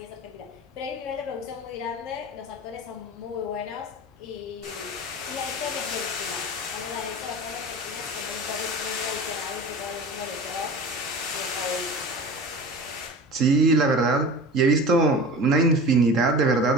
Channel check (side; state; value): both; normal; correlation 0.35